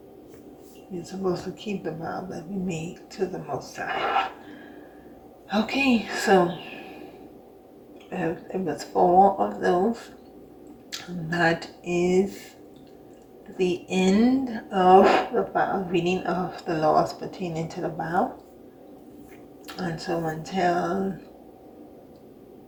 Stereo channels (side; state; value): both; identical; correlation 1.00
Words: We're supposed to keep the vow that we made to the Most High. Okay, so it was 4 of those. That is the end of the vow, reading of the laws pertaining to the vow. And so until